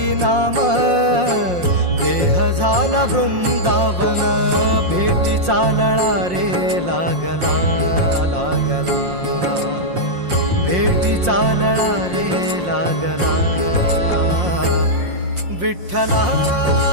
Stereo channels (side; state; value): left; late; 5.6 ms